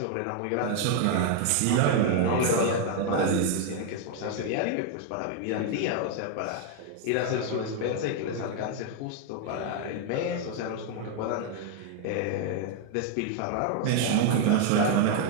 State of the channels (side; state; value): both; different; correlation 0.00